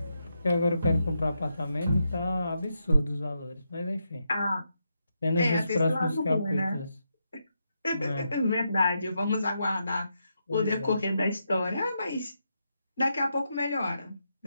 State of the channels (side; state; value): both; inverted; correlation -0.84